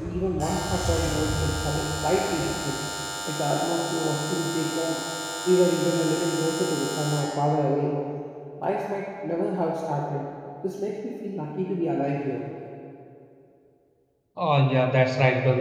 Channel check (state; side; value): identical; both; correlation 1.00